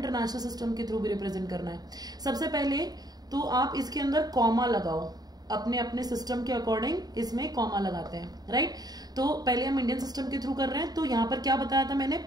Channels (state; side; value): late; left; 0.19 ms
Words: सिस्टम के थ्रू भी रिप्रेजेंट करना है। सबसे पहले तो आप इसके अंदर कॉमा लगाओ, अपने अपने सिस्टम के अकॉर्डिंग इसमें कॉमा लगाते हैं, राइट। तो पहले हम इंडियन सिस्टम के थ्रू कर रहे हैं, तो यहां पर क्या बताया था मैंने?